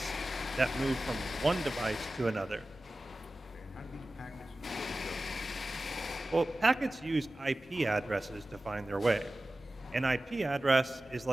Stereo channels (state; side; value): normal; both; correlation 0.96